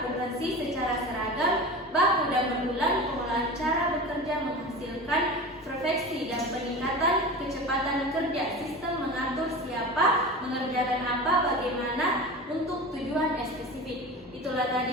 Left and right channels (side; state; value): both; normal; correlation 0.31